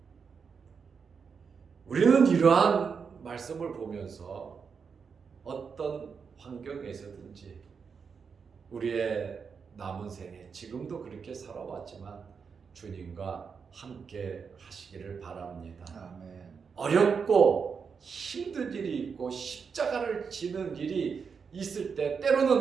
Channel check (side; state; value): left; quieter; 5.9 dB